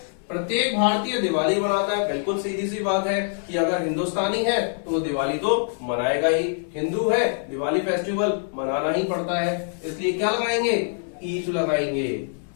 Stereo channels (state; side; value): silent; right; 62 dB below the other